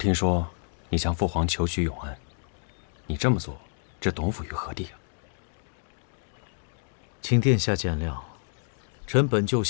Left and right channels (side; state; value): right; silent; digital silence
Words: 说你向父皇求娶永安，你这么做，置董府于何地啊？请殿下见谅，臣本就